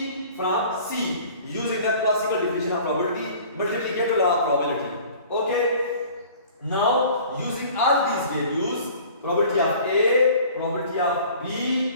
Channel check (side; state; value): both; inverted; correlation -0.47